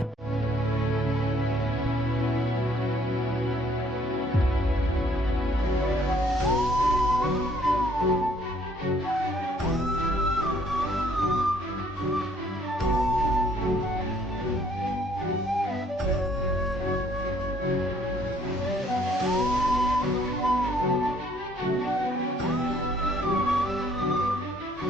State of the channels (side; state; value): both; normal; correlation 0.62